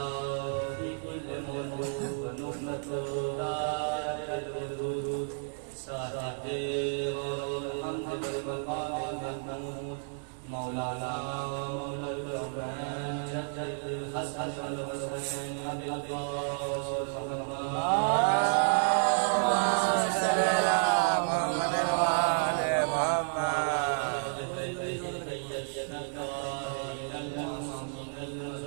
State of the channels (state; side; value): silent; left; digital silence